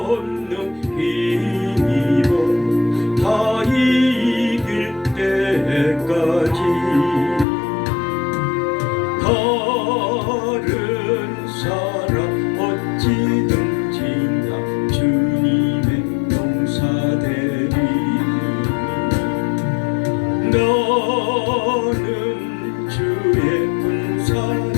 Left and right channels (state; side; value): drops out; right; at 7.5 s